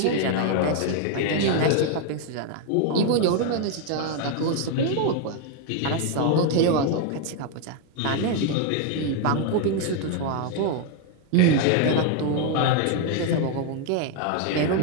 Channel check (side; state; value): both; different; correlation 0.01